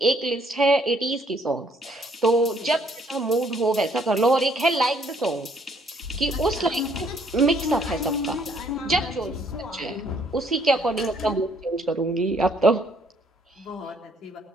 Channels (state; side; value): normal; both; correlation 0.65